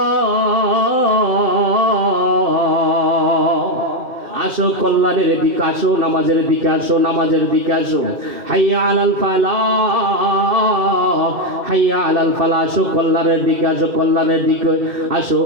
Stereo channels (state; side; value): late; left; 2.1 ms